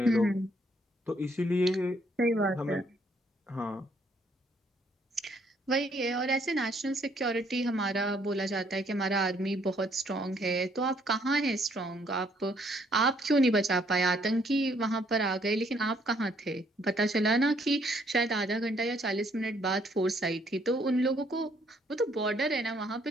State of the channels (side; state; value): both; normal; correlation 0.67